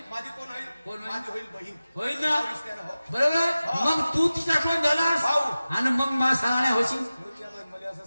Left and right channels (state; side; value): inverted; both; correlation -0.96